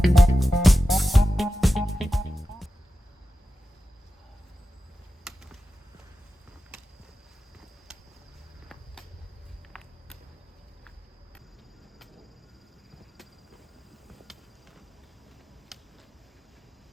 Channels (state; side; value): normal; both; correlation 0.93